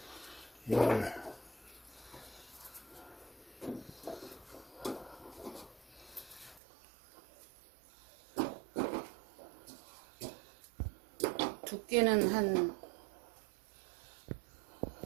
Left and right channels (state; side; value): drops out; left; at 6.6 s